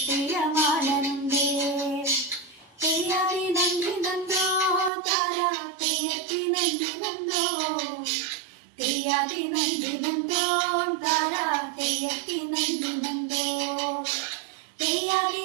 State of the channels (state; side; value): drops out; left; at 4.9 s